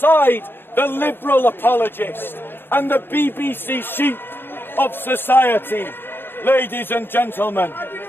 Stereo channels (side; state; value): right; late; 0.10 ms